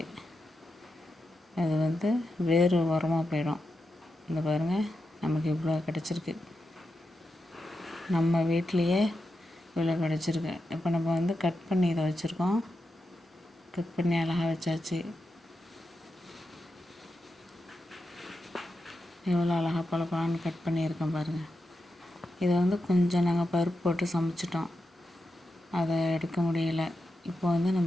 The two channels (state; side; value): normal; both; correlation 0.88